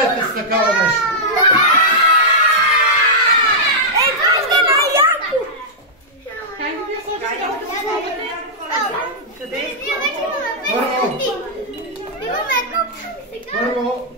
с такава нещо? Първо,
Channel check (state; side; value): normal; both; correlation -0.09